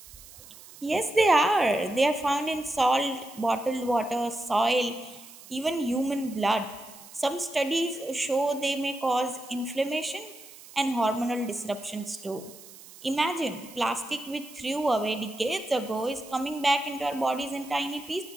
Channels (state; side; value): noise; right; hiss, 19 dB below the sound